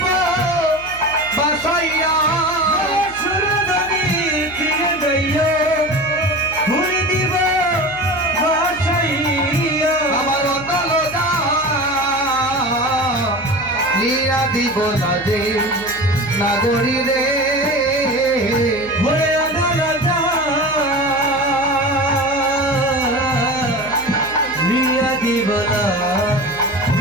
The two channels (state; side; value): noise; left; hum, 19 dB below the sound